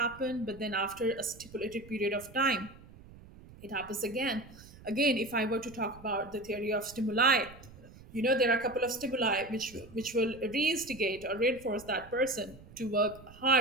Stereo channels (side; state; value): right; noise; rumble, 20 dB below the sound